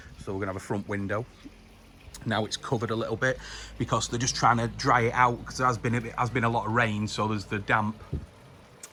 So we're gonna have a front window. Now it's covered a little bit because they're just trying to dry it out, because there has been a lot of rain, so there's the damp,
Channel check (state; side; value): identical; both; correlation 1.00